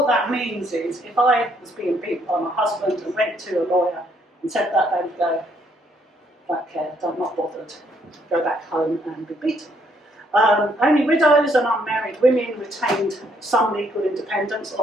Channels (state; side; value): normal; both; correlation 0.69